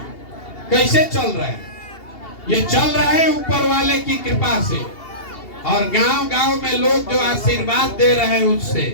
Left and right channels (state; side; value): late; right; 2.8 ms